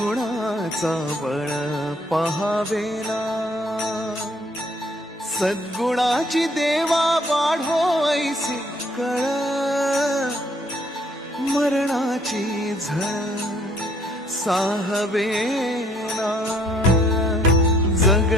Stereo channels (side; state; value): both; normal; correlation 0.64